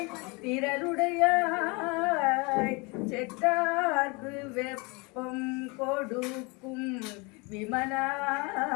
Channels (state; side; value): quieter; right; 28.5 dB